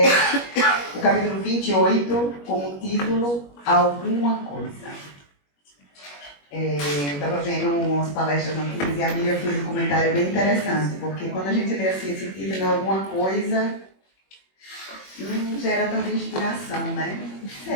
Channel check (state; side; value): late; right; 21 ms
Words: o capítulo 28, com o título Alguma Coisa. Eu estava vendo umas palestras antigas e a Miriam fez um comentário bem interessante, porque quando a gente lê assim esse título, Alguma Coisa, não gera tanta inspiração, né?